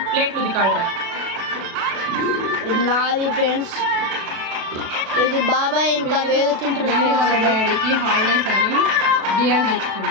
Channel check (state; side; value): late; left; 36 ms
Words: ప్లేట్లు ఉదికాడరా. ఇది నాది ఫ్రెండ్స్, ఇది బాబాయ్ ఇంకా వేదు తింటారు. డాడీకి హాలిడేస్ అని బియర్